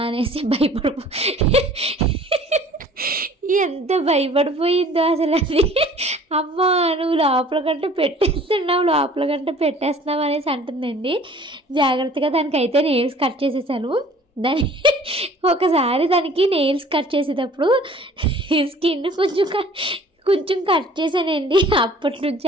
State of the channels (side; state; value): both; normal; correlation 0.50